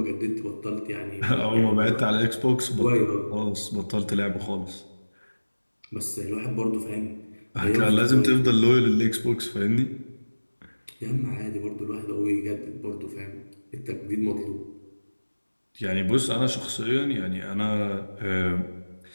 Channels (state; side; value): inverted; both; correlation -1.00